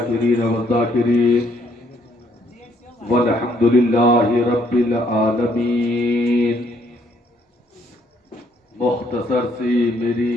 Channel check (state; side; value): normal; both; correlation 0.68